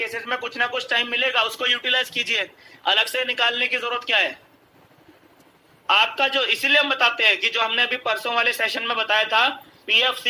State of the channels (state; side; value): identical; both; correlation 1.00